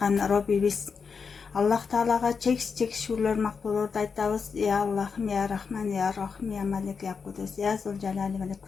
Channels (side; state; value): right; quieter; 5.6 dB